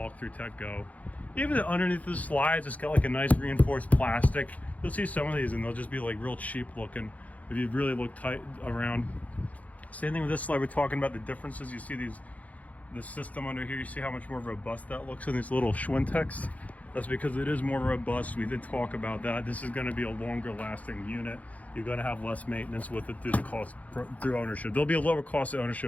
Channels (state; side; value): late; right; 0.071 ms